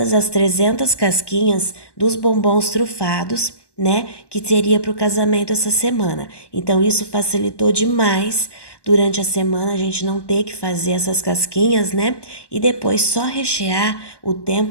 as 300 casquinhas dos bombons trufados, né, que seria para o casamento essa semana. Então isso facilitou demais durante a semana a gente não ter que fazer essas casquinhas, né? E depois só rechear, o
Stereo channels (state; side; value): late; right; 1.1 ms